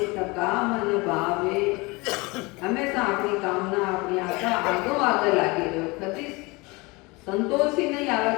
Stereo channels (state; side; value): quieter; right; 25.1 dB